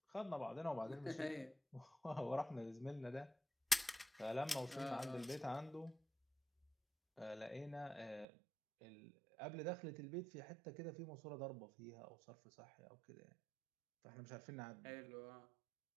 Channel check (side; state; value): left; drops out; at 8.2 s